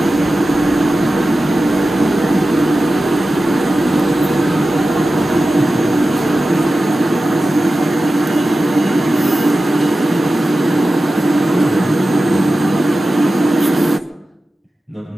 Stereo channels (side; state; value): both; normal; correlation 0.94